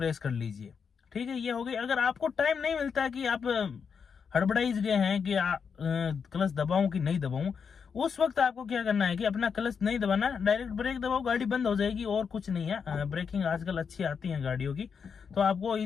कर लीजिए। ठीक है, ये हो गई। अगर आपको टाइम नहीं मिलता है कि आप हड़बड़ाइज गए हैं कि क्लच दबाऊं कि नहीं दबाऊं, उस वक्त आपको क्या करना है कि अपना क्लच नहीं दबाना, डायरेक्ट ब्रेक दबाओ, गाड़ी बंद हो जाएगी और कुछ नहीं है। ब्रेकिंग आजकल अच्छी आती है गाड़ियों की, तो आपको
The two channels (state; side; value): quieter; right; 6.3 dB